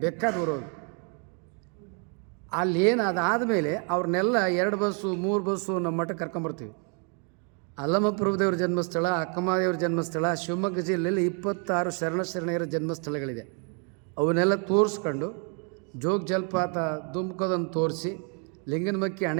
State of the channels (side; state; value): left; quieter; 39.4 dB